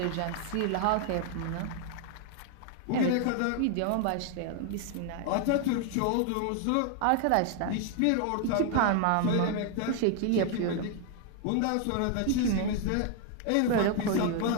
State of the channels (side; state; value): both; different; correlation 0.00